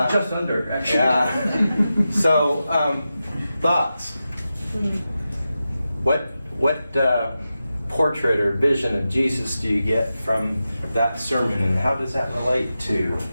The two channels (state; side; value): inverted; both; correlation -0.91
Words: under, actually. Yeah. So, thoughts? What portrait or vision of Jesus do you get from that sermon, and how does that relate to